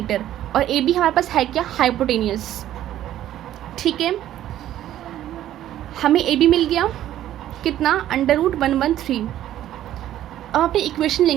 और AB हमारे पास है क्या, हाइपोटेनियस। ठीक है, हमें AB मिल गया कितना, अंडर रूट 113। अब अपनी इक्वेशन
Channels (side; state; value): left; quieter; 12.5 dB